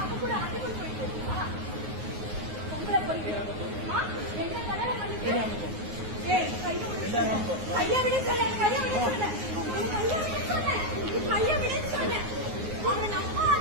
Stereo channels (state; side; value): late; left; 9.5 ms